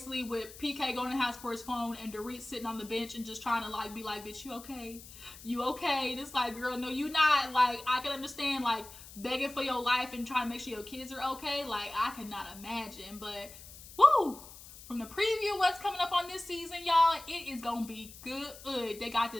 with PK going to the house for his phone and Dorit sitting on the bench and just trying to, like, be like, bitch, you okay? You okay? And it's like, girl, no, you not. Like, I can understand, like, begging for your life and trying to make sure your kids are okay. Like, I could not imagine. But, woo! From the preview, what's coming up on this season, y'all, it is going to be good. They got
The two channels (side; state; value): left; noise; hiss, 17 dB below the sound